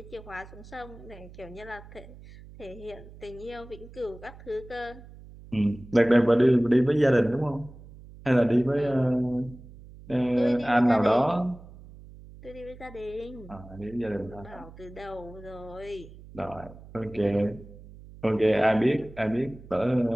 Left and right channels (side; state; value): right; noise; hum, 19 dB below the sound